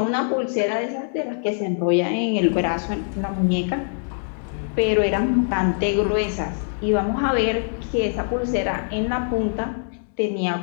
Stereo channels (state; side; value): silent; right; digital silence